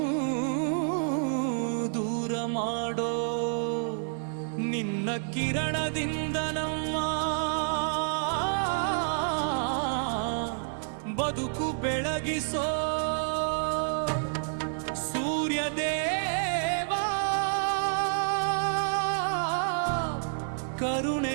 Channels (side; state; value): left; silent; 59 dB below the other